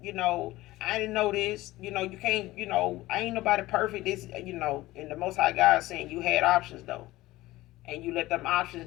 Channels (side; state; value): right; quieter; 17.9 dB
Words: I didn't know this. You can't, I ain't nobody perfect. This, and the Most High God saying you had options, though. And you let them